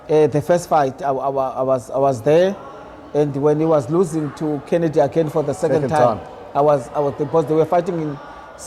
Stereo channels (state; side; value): identical; both; correlation 1.00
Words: the first fight I was there, and when he was losing to Kennedy again for the second time. I was because they were fighting in